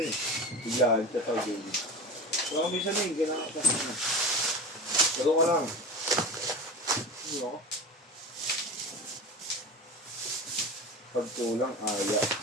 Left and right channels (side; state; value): both; normal; correlation 0.29